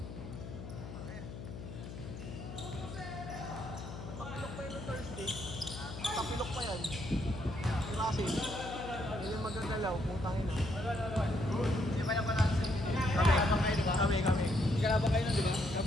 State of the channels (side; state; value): left; noise; hum, 10 dB below the sound